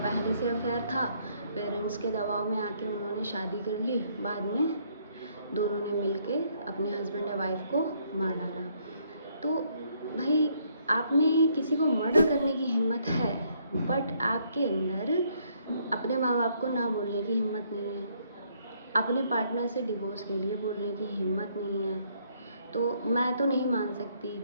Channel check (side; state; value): both; inverted; correlation -0.69